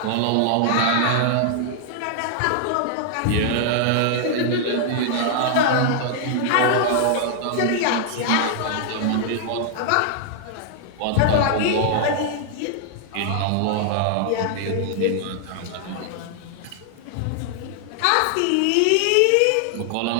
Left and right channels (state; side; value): different; both; correlation 0.00